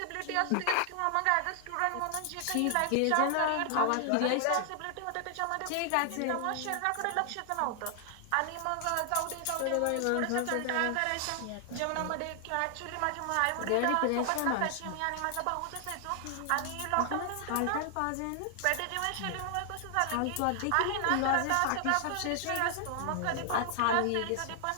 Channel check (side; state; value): both; different; correlation 0.00